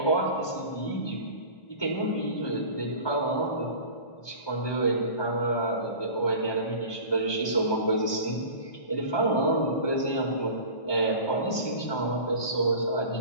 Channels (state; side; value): late; right; 1.2 ms